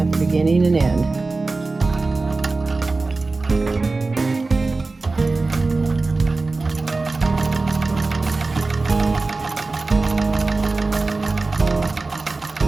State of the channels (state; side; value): quieter; left; 3.6 dB